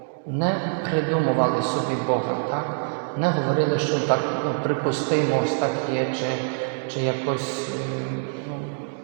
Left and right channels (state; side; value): silent; left; 62 dB below the other